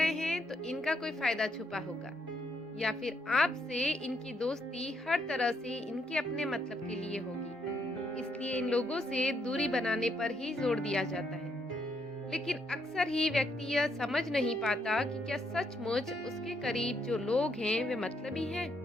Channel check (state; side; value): normal; both; correlation 0.75